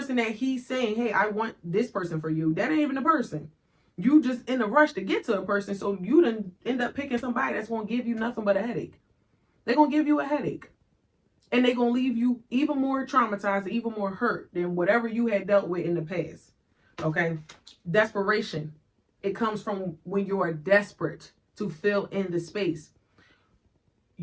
that he's saying, hey, I want this person for you. That ain't even the person. You just in a rush to get to a person, so you done end up picking somebody that's going to give you nothing but a headache. They're going to give you a headache. And they're going to leave you even more traumatized, even more hurt than whatever you had dealt with in the past. Okay? Desperation. It comes from when you are desperate to fill in the space.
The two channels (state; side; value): identical; both; correlation 1.00